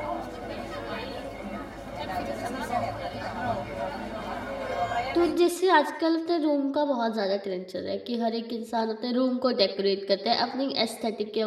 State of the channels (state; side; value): identical; both; correlation 1.00